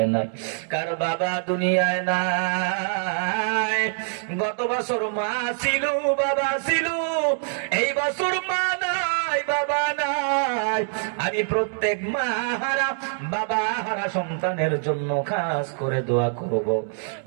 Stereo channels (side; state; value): left; silent; digital silence